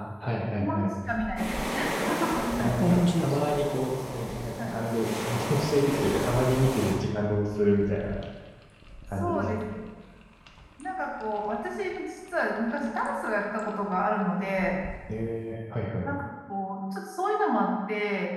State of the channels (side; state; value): both; identical; correlation 1.00